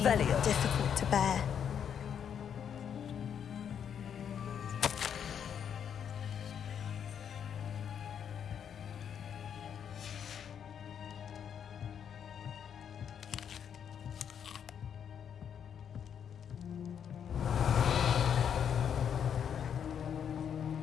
are difficult to bear.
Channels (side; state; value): right; quieter; 8.2 dB